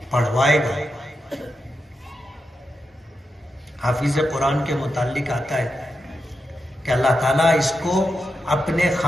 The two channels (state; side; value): normal; both; correlation 0.87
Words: پڑھوائے گا. حافظ قرآن کے متعلق آتا ہے کہ اللہ تعالیٰ اس کو اپنے